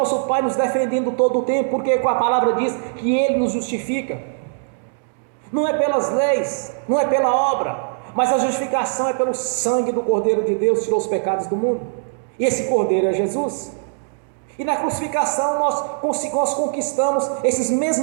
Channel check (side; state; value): left; silent; digital silence